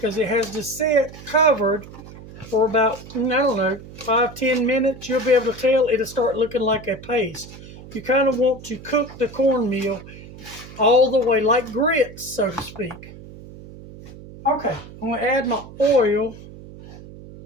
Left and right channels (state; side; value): noise; right; hum, 16 dB below the sound